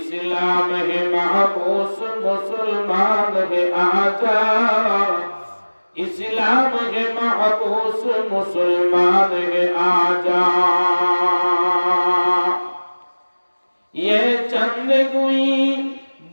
है महबूस, मुसलमान है आजा। इस्लाम है महबूस, मुसलमान है आजा। ये चंद गुई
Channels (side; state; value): both; inverted; correlation -1.00